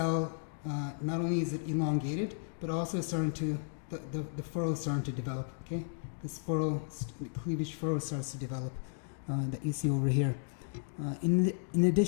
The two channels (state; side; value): silent; right; digital silence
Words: not only is it elongated, but also starting to, the furrow is starting to develop, okay? This furrow, the cleavage furrow starts to develop that you see over here. In